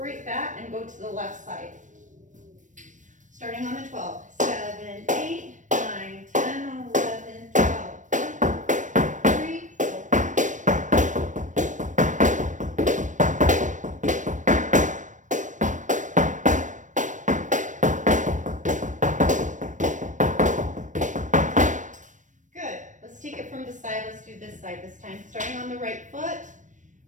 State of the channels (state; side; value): late; left; 0.37 ms